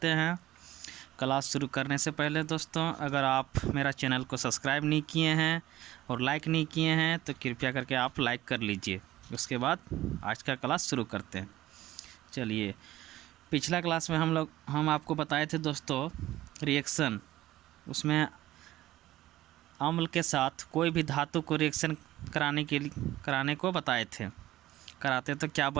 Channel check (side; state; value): left; quieter; 15.4 dB